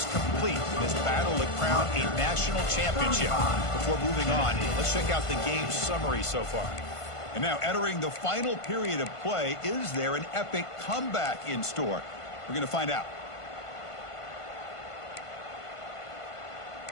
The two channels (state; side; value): late; right; 1.5 ms